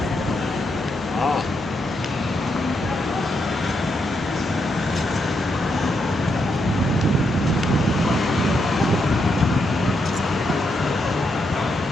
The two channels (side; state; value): right; noise; hum, 19 dB below the sound